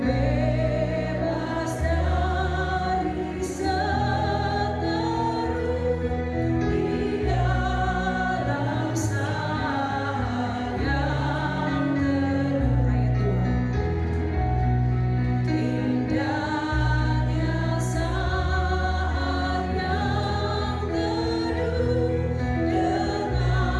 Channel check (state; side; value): identical; both; correlation 1.00